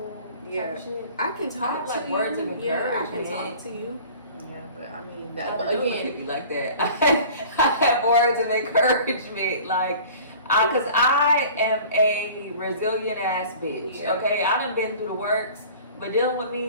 Yeah. type of shit. I can talk I have, to like, you. words of Yeah, I can encouragement. talk to you. Yeah, but I mean, I that, don't but know if again, it be like that. I have words of encouragement, like, cause I am a resilient ass bitch. Yeah. Okay, I done been through the works, but dealing with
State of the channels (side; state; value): both; inverted; correlation -0.44